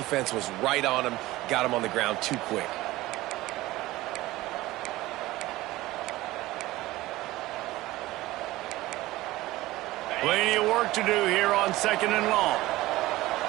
was right on him, got him on the ground too quick. Plenty of work to do here on second and long.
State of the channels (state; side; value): quieter; left; 18.0 dB